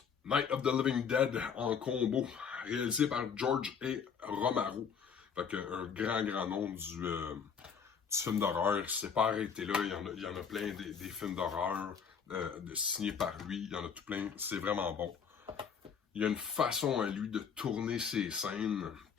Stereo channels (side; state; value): right; quieter; 6.8 dB